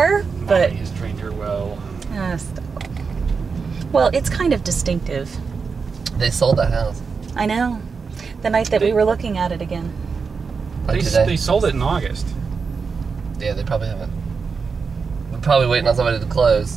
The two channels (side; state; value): left; quieter; 5.2 dB